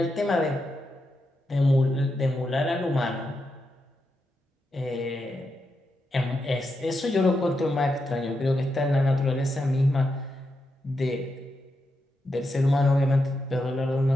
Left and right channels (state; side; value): normal; both; correlation 0.85